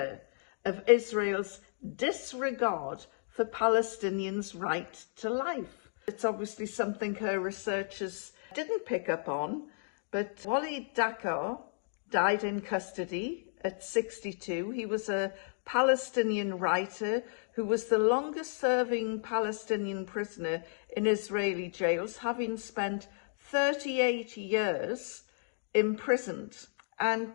of Israel's disregard for Palestinians' right to life. It's obviously something her researchers didn't pick up on, but Walid Dakar died in custody at 62. He was a Palestinian writer who was the longest serving Palestinian prisoner in Israeli jails, having spent 38 years imprisoned. And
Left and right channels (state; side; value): silent; right; digital silence